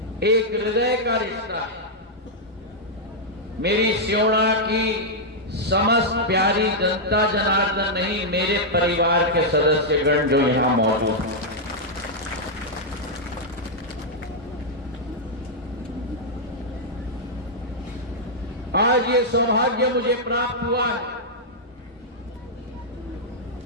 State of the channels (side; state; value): both; normal; correlation -0.06